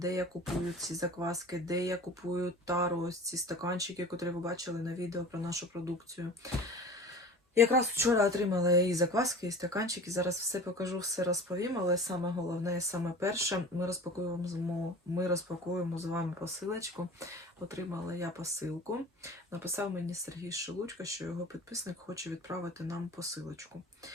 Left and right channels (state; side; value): normal; both; correlation 0.39